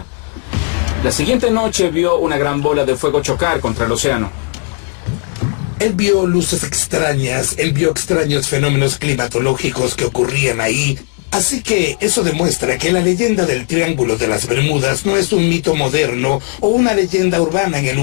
La siguiente noche vio una gran bola de fuego chocar contra el océano. Él vio luces extrañas, él vio extraños fenómenos climatológicos que ocurrían ahí. Así que eso demuestra que la leyenda del Triángulo de las Bermudas no es un mito moderno o una leyenda urbana en el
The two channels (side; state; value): right; quieter; 35.9 dB